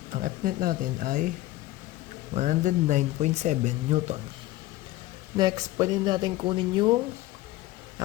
Ang Fnet natin ay 109.7 newton. Next, pwede natin kunin yung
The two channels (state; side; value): quieter; right; 16.8 dB